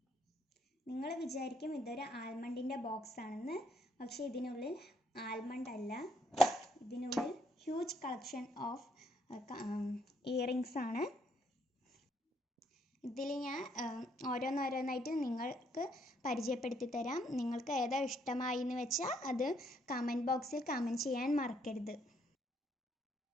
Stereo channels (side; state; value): both; normal; correlation 0.71